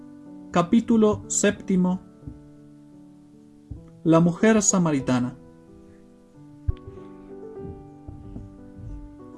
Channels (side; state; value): both; identical; correlation 1.00